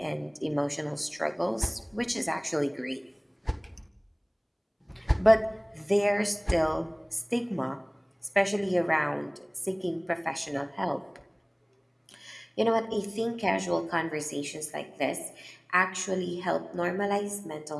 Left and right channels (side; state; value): both; identical; correlation 1.00